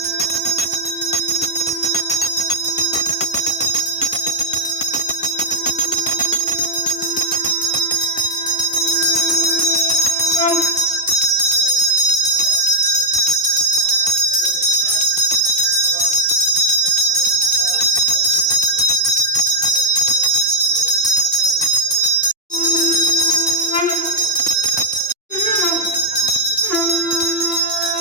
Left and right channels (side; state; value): both; normal; correlation 0.01